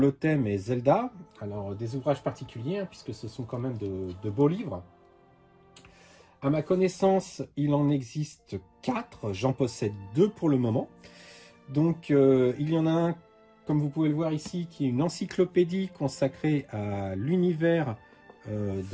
thème est Zelda. Alors des ouvrages particuliers puisque ce sont quand même de beaux livres. À ma connaissance il en existe 4, j'en possède 2 pour le moment. Donc il y en a un, comme vous pouvez le voir ici, qui est une encyclopédie consacrée à l'univers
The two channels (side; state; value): both; identical; correlation 1.00